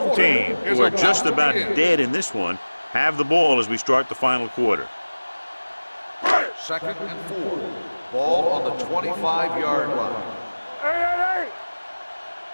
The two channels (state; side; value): inverted; both; correlation -1.00